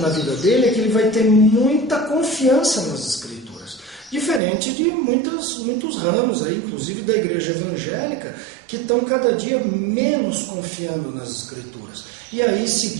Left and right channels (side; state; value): left; drops out; at 4.4 s